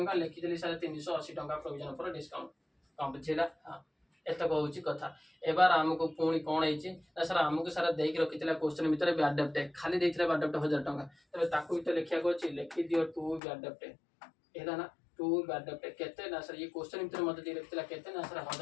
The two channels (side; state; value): right; drops out; at 13.4 s